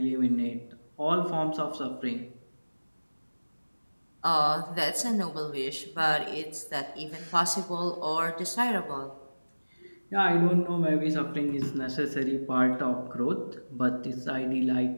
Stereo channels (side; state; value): both; inverted; correlation -1.00